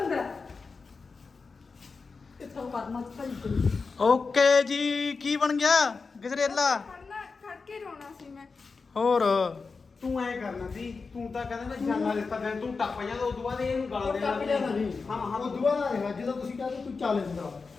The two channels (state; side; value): quieter; right; 4.6 dB